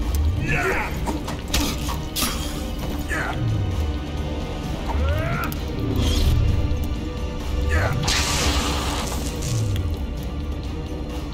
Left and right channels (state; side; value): identical; both; correlation 1.00